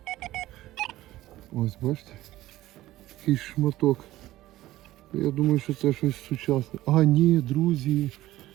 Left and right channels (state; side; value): quieter; left; 15.8 dB